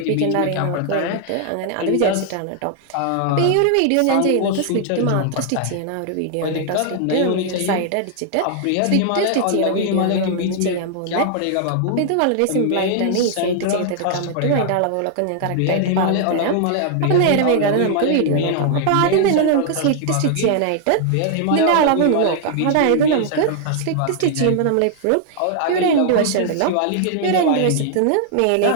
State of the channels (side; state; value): both; different; correlation 0.00